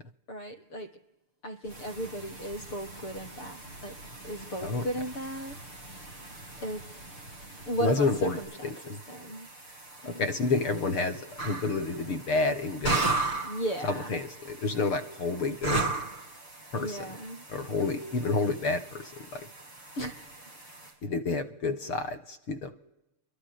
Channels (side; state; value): right; late; 6.7 ms